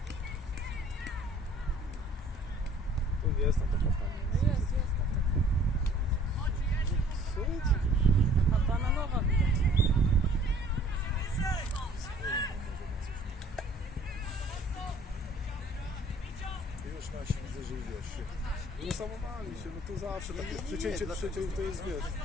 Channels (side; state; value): both; normal; correlation 0.54